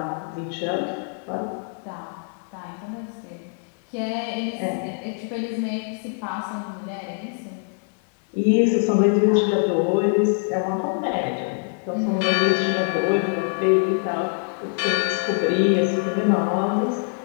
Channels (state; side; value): silent; right; 55 dB below the other